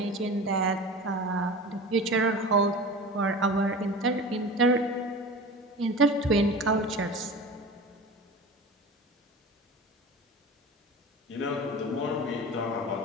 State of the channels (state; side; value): normal; both; correlation 0.34